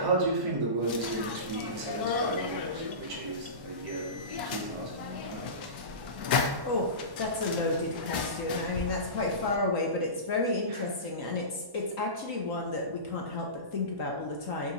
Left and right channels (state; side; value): late; left; 1.1 ms